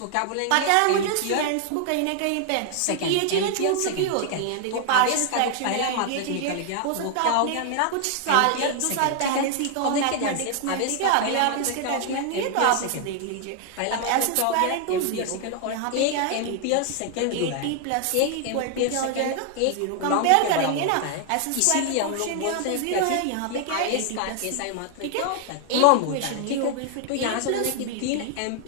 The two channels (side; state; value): both; different; correlation 0.00